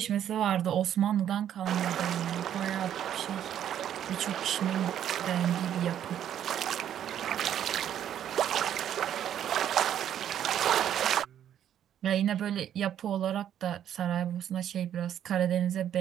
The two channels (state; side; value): quieter; left; 10.2 dB